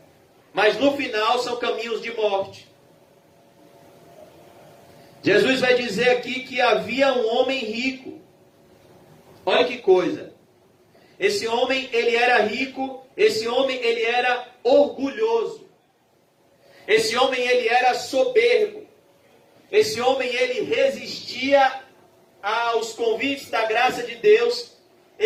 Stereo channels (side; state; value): both; identical; correlation 1.00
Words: mas no final são caminhos de morte. Jesus vai dizer aqui que havia um homem rico. Olha que coisa. Esse homem, ele era rico, esse homem, ele era orgulhoso. Esse homem, ele era soberbo. Esse homem, ele resistia aos convites da graça de Deus.